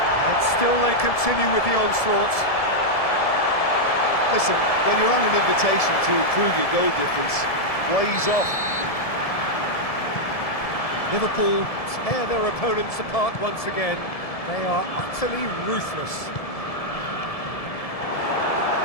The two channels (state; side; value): late; right; 1.7 ms